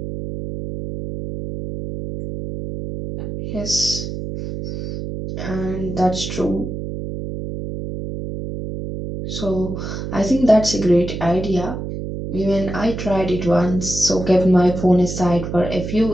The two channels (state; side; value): noise; right; hum, 6 dB below the sound